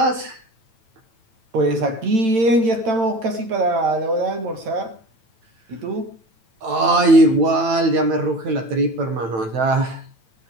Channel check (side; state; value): left; late; 9.0 ms